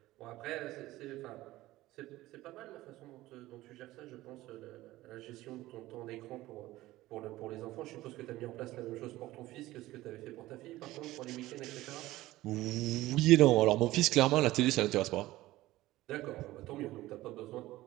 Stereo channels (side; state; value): left; quieter; 17.0 dB